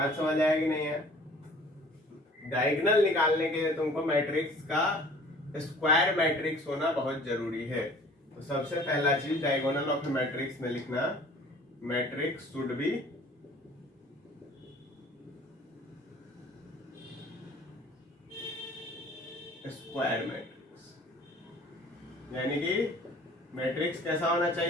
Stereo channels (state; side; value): normal; both; correlation 0.50